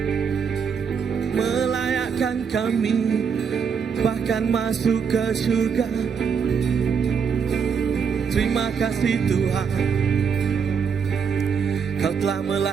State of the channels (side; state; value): left; quieter; 6.5 dB